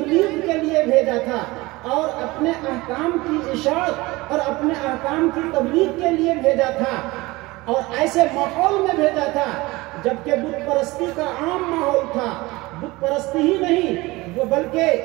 کے لیے بھیجا تھا، اور اپنے احکام کی اشاعت اور اپنے احکام کی تبلیغ کے لیے بھیجا تھا، اور ایسے ماحول میں بھیجا تھا جبکہ بت پرستی کا عام ماحول تھا۔ بت پرستی ہی نہیں بلکہ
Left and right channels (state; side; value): quieter; left; 21.4 dB